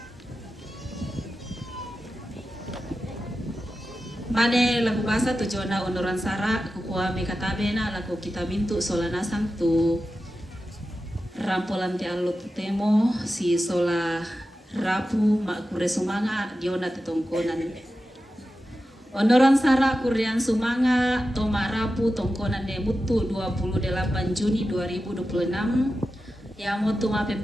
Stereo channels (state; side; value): normal; both; correlation 0.92